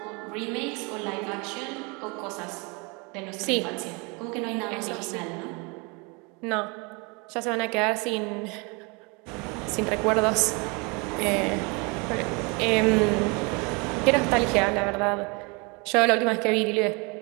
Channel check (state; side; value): quieter; left; 30.0 dB